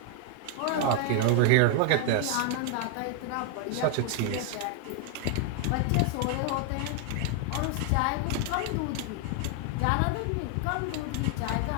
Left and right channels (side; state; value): both; different; correlation 0.01